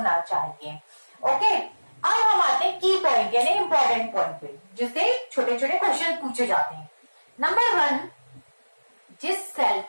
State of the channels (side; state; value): both; inverted; correlation -1.00